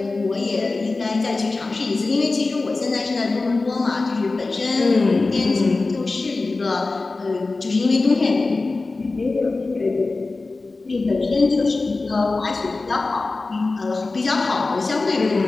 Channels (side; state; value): right; quieter; 3.5 dB